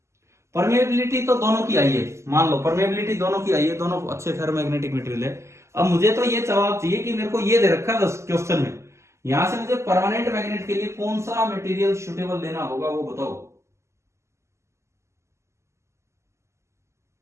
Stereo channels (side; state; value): left; late; 0.13 ms